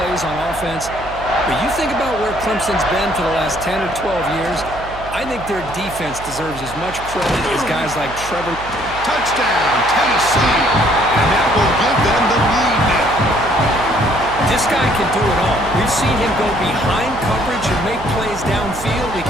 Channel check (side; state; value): right; noise; hum, 14 dB below the sound